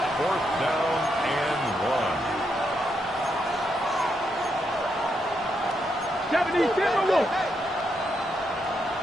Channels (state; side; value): normal; both; correlation 0.80